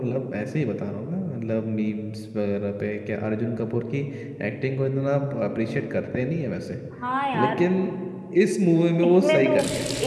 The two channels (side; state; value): both; identical; correlation 1.00